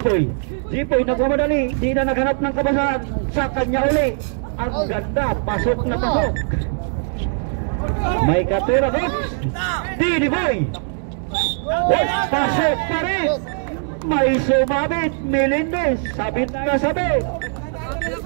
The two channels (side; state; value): left; silent; 65 dB below the other